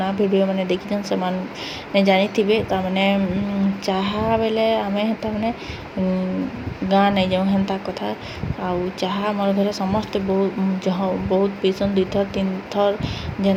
वीडियो मैंने देखी से मैंने जानी थे तामाने चाह बेले आम तामाने गाँ नहीं जाऊँ हेन्ता कथा आउ चाह मोर घरे समस्ते बहुत पीसन 2 थर 3 थर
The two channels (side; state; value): both; identical; correlation 1.00